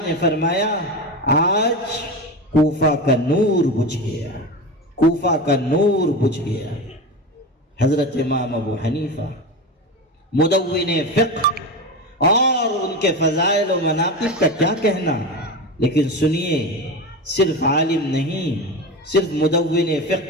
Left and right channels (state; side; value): normal; both; correlation 0.24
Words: نے فرمایا آج کوفہ کا نور بجھ گیا، کوفہ کا نور بجھ گیا۔ حضرت امام ابو حنیفہ مدون فقہ، اور ان کے فضائل و مناقب کا کیا کہنا، لیکن سنیے، صرف عالم نہیں، صرف مدون